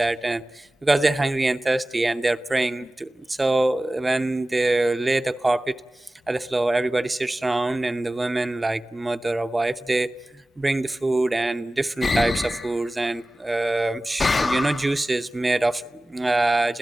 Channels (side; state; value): both; normal; correlation 0.97